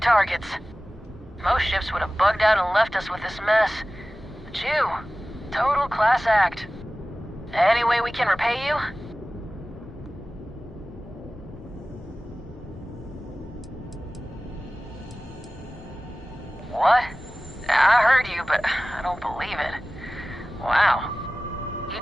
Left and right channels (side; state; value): both; normal; correlation 0.97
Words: Targets. Most ships would have bugged out and left us with this mess. But you, total class act. Any way we can repay you? What? I heard you, but I don't believe it. Wow. You